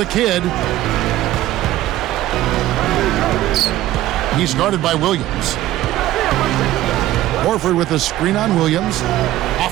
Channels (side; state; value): left; quieter; 14.8 dB